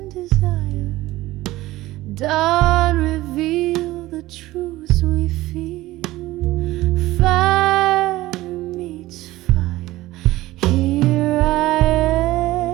desire. Dawn revealed the truths we fear. Fire meets fire. Here I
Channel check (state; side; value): quieter; left; 17.4 dB